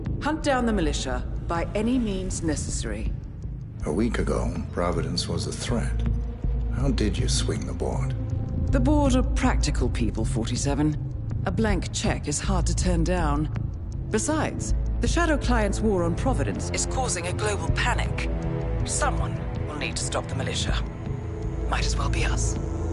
Hunt down the militia by any means necessary. A week ago, Providence was a threat. How did you swing the board? The board are practical people, 47. A blank check is hard to turn down. Besides, the Shadow Client's war on Providence is causing a global panic. Someone will need to stop the militia. Might as well be us.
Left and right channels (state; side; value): identical; both; correlation 1.00